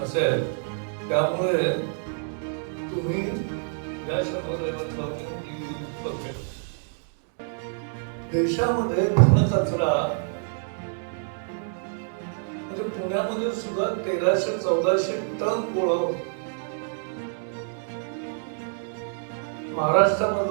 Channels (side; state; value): left; silent; digital silence